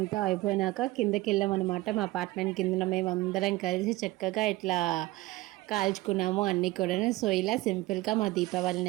అయిపోయినాక కిందకి వెళ్ళామన్నమాట. మా అపార్ట్మెంట్ కింద మేము అందరం కలిసి చక్కగా ఇట్లా కాల్చుకున్నాము అన్నీ కూడా. సో ఇలా సింపుల్గా మా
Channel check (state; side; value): quieter; left; 19.0 dB